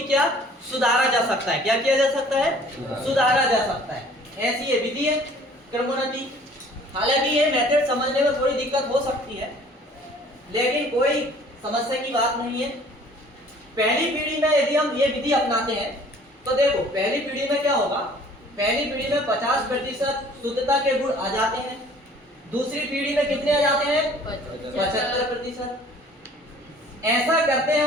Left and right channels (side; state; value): both; normal; correlation 0.53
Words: क्या सुधारा जा सकता है। क्या किया जा सकता है? सुधारा जा सकता है। ऐसी ये विधि है क्रमोन्नति। हालांकि ये मेथड समझने में थोड़ी दिक्कत हो सकती है, लेकिन कोई समस्या की बात नहीं है। पहली पीढ़ी में यदि हम ये विधि अपनाते हैं तो देखो पहली पीढ़ी में क्या होगा, पहली पीढ़ी में 50% शुद्धता के गुण आ जाते हैं। दूसरी पीढ़ी में कितने आ जाते हैं? 75%। ऐसा करते हैं,